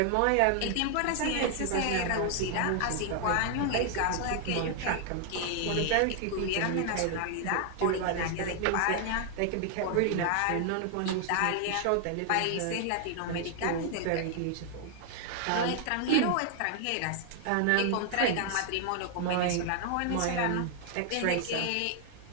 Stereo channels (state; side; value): different; both; correlation 0.00